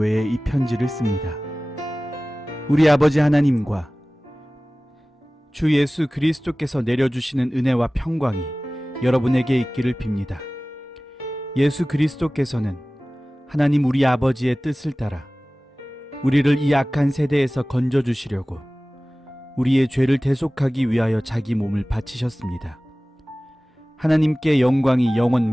이 편지를 씁니다. 우리 아버지 하나님과 주 예수 그리스도께서 내려주시는 은혜와 평강이 여러분에게 있기를 빕니다. 예수 그리스도께서는 하나님 우리 아버지의 뜻을 따라 우리를 이 악한 세대에서 건져주시려고 우리의 죄를 대속하기 위하여 자기 몸을 바치셨습니다. 하나님께 영광이 영원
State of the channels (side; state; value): both; normal; correlation 0.98